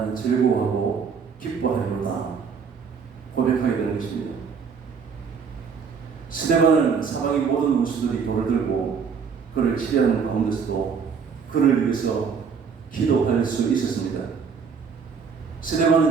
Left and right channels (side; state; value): left; quieter; 6.1 dB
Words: 즐거워하고 기뻐하리로다 고백하게 되는 것입니다. 스데반은 사방의 모든 원수들이 돌을 들고 그를 치려하는 가운데서도 그를 위해서 기도할 수 있었습니다.